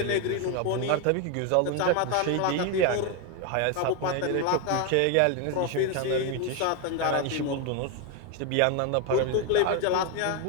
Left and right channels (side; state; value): both; different; correlation 0.01